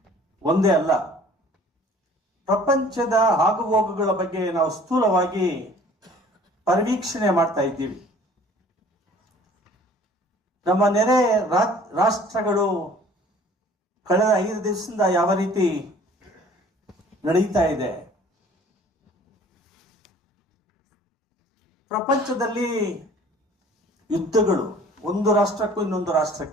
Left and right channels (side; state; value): both; normal; correlation 0.51